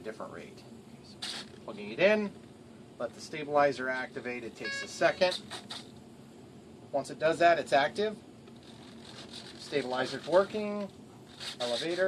rate. Okay, so plugging it in. Let the stabilizer activate. It takes a second. Once it does that, it's active. Stabilizer's working.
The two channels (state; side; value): identical; both; correlation 1.00